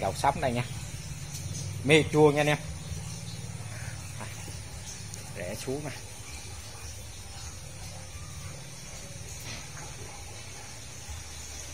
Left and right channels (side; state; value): both; identical; correlation 1.00